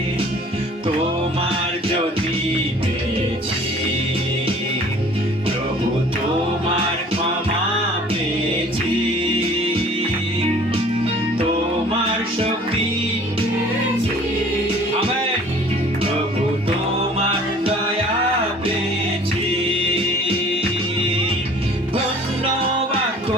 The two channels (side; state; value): both; normal; correlation 0.50